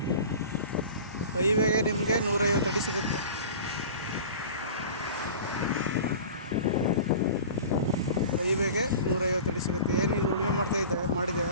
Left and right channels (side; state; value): both; inverted; correlation -0.38